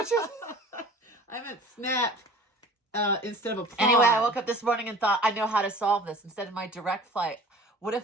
meant snap instead of applaud. Anyway, I woke up this morning and thought, I know how to solve this. Instead of my direct flight, what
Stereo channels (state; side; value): normal; both; correlation 0.45